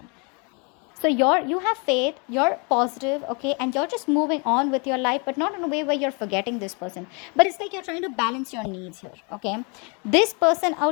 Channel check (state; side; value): quieter; right; 33.4 dB